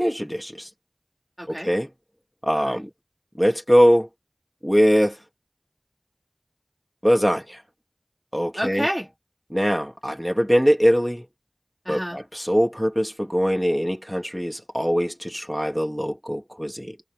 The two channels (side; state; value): both; identical; correlation 1.00